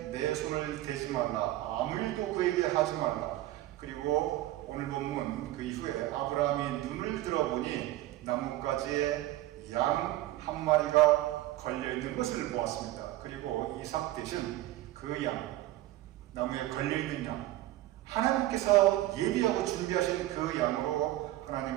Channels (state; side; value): quieter; left; 15.7 dB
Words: 내 손을 대지 말라, 아무 일도 그에게 하지 말라. 그리고 오늘 본문 그 이후에 아브라함이 눈을 들어보니 나뭇가지에 양 한 마리가 걸려있는 것을 보았습니다. 그리고 이삭 대신 그 양, 나무에 걸려있는 양, 하나님께서 예비하고 준비하신 그 양으로